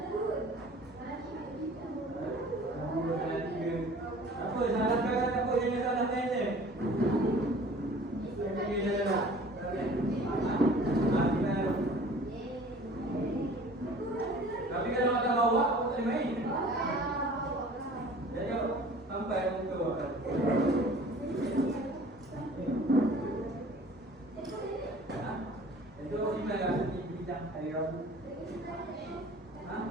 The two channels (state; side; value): normal; both; correlation 0.47